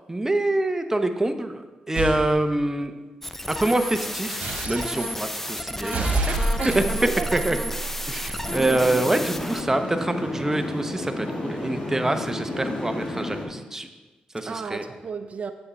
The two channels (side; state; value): both; normal; correlation 0.89